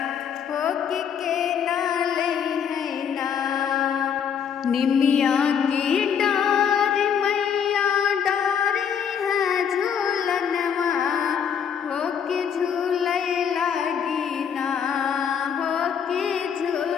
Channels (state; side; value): quieter; right; 7.7 dB